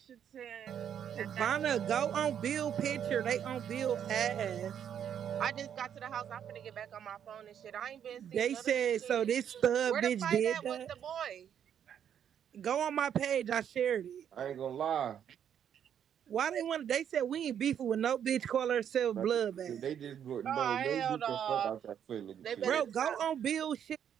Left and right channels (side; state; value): left; quieter; 9.0 dB